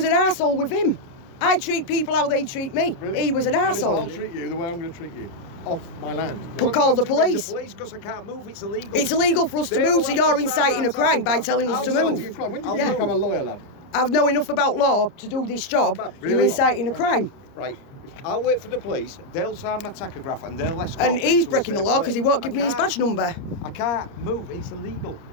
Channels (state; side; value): late; right; 29 ms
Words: an arsehole with him. I treat people how they treat me. Really? He was an Listen, I'll arsehole. treat you the way I'm going to treat you. Off my land. But call the police. The police, because I can't move. It's illegal. It's illegal for us to They move, will so have you're to inciting sign a that crime by document. telling us to I'll move. sign When did you become a lawyer, lad? I know enough about law to do this job. Really? You're inciting a crime. Right. I'll wait for the police. They'll sign my tachograph and they'll escort And me he's to a breaking the safe law because he place. won't give me his badge number. I can't move. It's illegal.